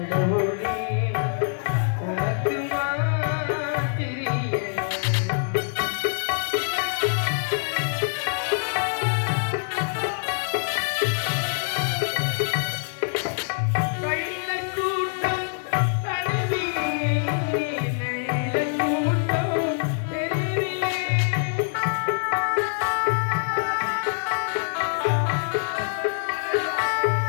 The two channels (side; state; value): right; silent; 62 dB below the other